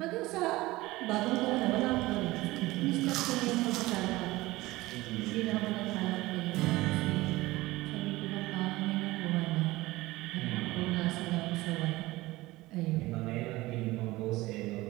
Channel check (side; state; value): left; quieter; 19.3 dB